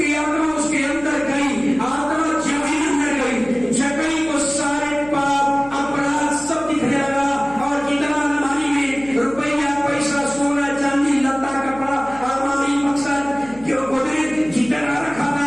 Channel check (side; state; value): left; noise; hum, 20 dB below the sound